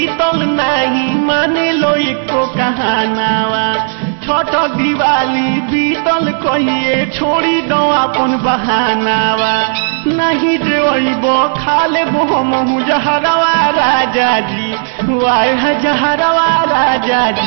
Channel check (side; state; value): left; silent; digital silence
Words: नहीं माने लो एको कहनावा, छठ दिवाली बीतल कहिए छोड़ी दो अपन बहानावा नहीं जेबो खा लेबो हमहू जहरवा राजा जी वाह जहरवा राजा